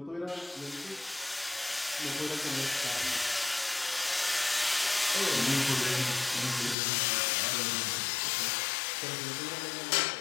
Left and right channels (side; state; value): right; drops out; at 6.8 s